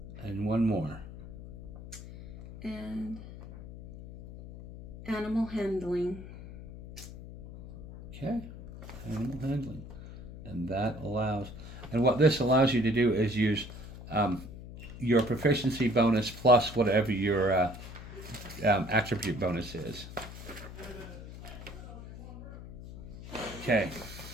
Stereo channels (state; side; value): noise; left; hum, 13 dB below the sound